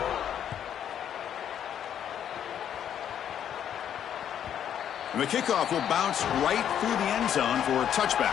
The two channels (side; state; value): right; quieter; 9.5 dB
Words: And the kickoff will bounce right through the end zone for a